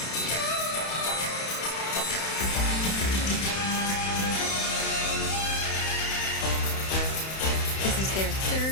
This is their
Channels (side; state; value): right; late; 31 ms